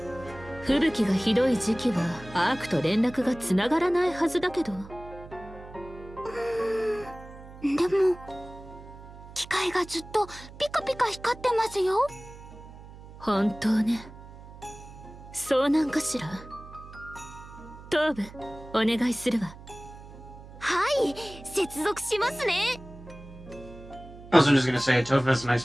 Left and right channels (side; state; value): right; noise; hum, 17 dB below the sound